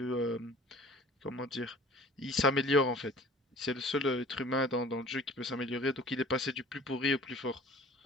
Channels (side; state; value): both; normal; correlation 0.47